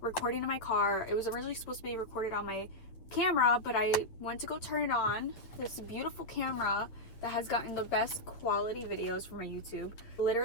recording in my car, it was originally supposed to be recorded on my camera, but I went to go turn it on. This beautiful camera that has gotten the best quality videos for my YouTube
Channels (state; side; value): late; right; 8.6 ms